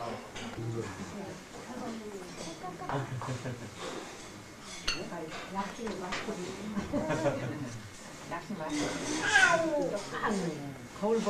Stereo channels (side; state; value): both; identical; correlation 1.00